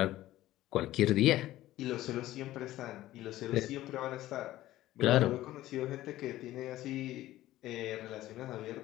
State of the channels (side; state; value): right; quieter; 15.2 dB